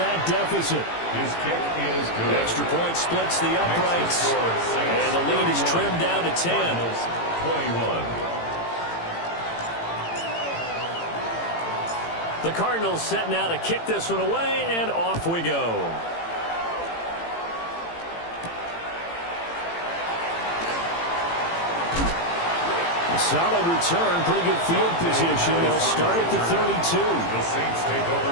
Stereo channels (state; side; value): late; right; 18 ms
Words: deficit. His kick is good. Extra point splits the uprights. And the lead is trimmed down to 10. 21. The Cardinals set now to kick this one away, and off we go. A solid return, pretty good field position. They'll start at the 32. The Saints take